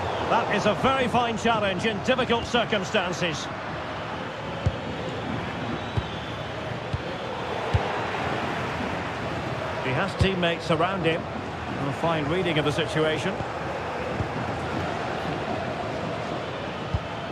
That is a very fine challenge in difficult circumstances. He has teammates around him. A fine reading of the situation.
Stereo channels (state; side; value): identical; both; correlation 1.00